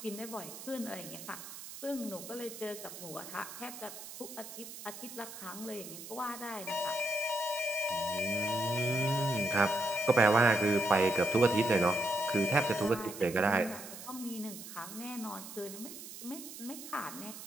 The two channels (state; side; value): noise; right; hiss, 12 dB below the sound